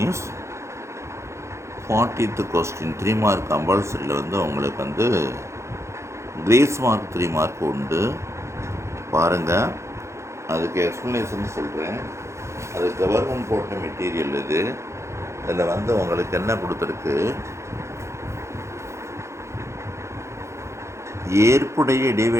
40th question 3 mark கம்பல்சரியில் உங்களுக்கு கிரேஸ் மார்க் 3 மார்க் உண்டு. பாருங்கள், அதுக்கு எக்ஸ்ப்ளனேஷன் சொல்கிறேன். அது கவர்மெண்ட் போட்ட மெட்டீரியல் இது. இதில் உங்களுக்கு என்ன கொடுத்துருக்கு, ஏற்புடைய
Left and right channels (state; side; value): late; left; 0.14 ms